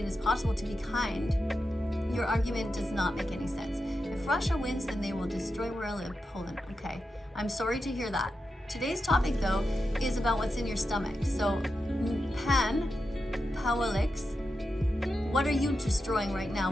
as possible, to be kind. Your argument does not make any sense. If Russia wins, then they will destroy where I live, Poland. Okay, I'm sorry to hear that. Today's topic, though, is about what's in your stomach. So, Pawelix, what are you destroying right now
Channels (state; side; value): normal; both; correlation 0.89